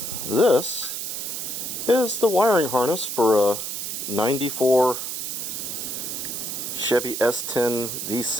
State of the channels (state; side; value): noise; right; hiss, 4 dB below the sound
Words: This is the wiring harness for a 94 Chevy S10